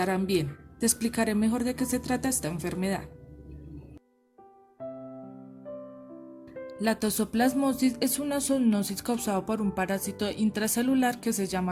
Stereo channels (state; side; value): identical; both; correlation 1.00